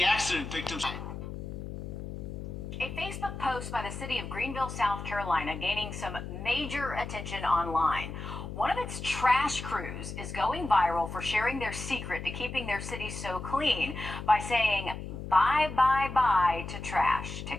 accident victims. A Facebook post by the city of Greenville, South Carolina, gaining some major attention online. One of its trash crews is going viral for sharing their secret to keeping their city so clean by saying bye, bye, bye to trash.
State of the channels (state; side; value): noise; left; hum, 8 dB below the sound